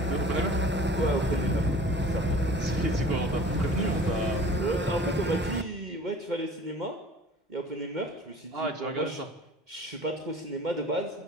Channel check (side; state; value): both; normal; correlation 0.46